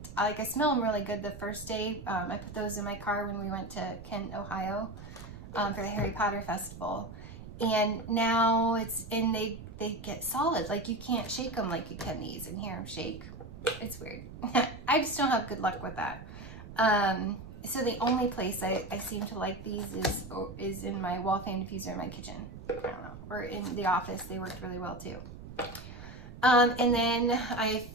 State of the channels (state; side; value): noise; right; rumble, 13 dB below the sound